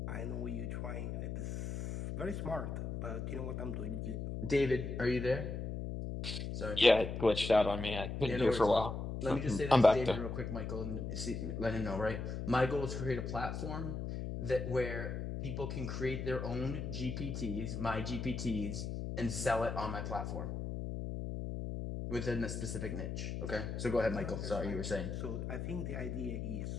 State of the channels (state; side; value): noise; left; hum, 4 dB below the sound